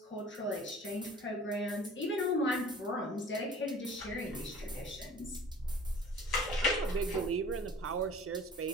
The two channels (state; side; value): normal; both; correlation 0.46